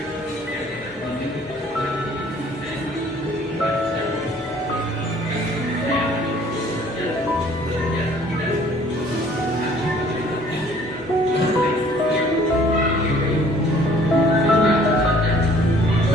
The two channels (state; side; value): normal; both; correlation 0.56